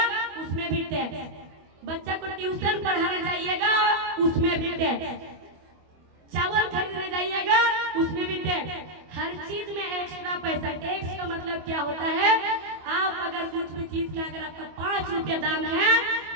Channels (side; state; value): left; late; 25 ms